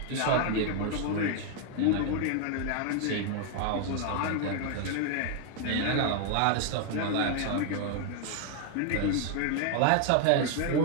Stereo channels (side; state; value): both; different; correlation 0.00